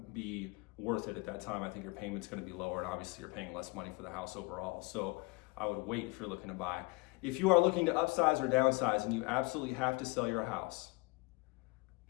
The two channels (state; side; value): quieter; right; 26.6 dB